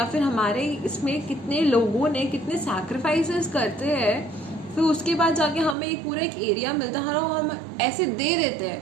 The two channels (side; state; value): left; drops out; at 5.8 s